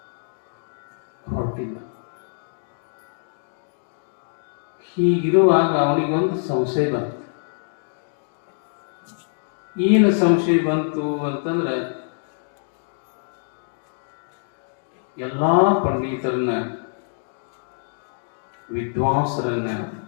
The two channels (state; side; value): silent; right; digital silence